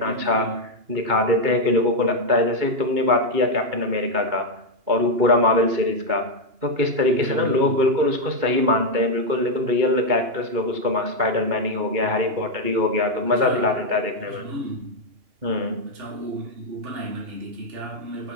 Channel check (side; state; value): left; late; 2.8 ms